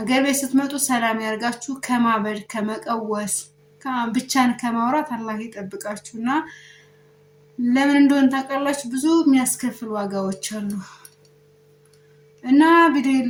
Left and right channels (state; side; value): identical; both; correlation 1.00